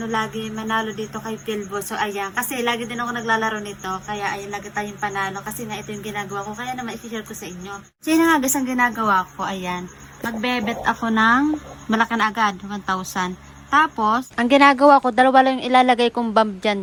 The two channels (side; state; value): both; identical; correlation 1.00